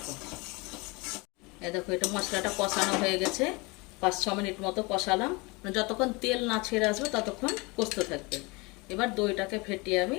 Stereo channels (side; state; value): right; quieter; 26.5 dB